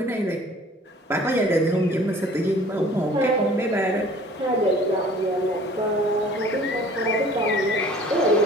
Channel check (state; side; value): normal; both; correlation 0.50